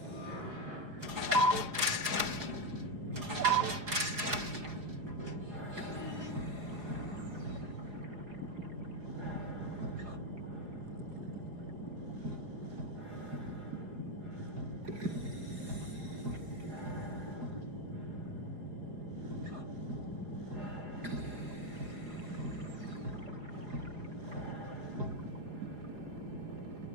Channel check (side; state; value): left; late; 4.8 ms